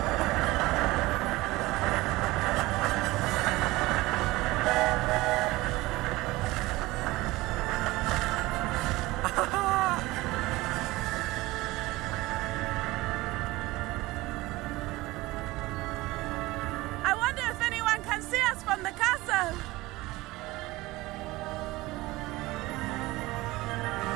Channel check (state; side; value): quieter; left; 19.8 dB